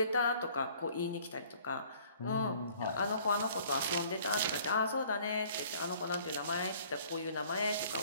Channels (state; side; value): inverted; both; correlation -0.55